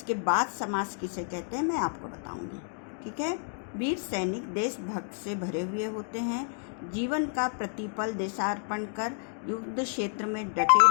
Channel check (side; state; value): right; silent; 58 dB below the other